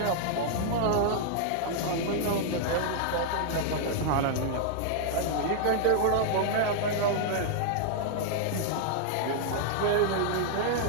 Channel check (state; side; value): different; both; correlation -0.01